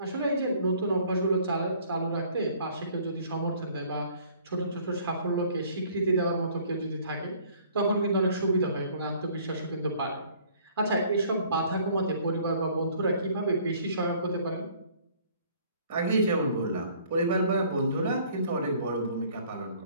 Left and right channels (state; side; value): inverted; both; correlation -0.57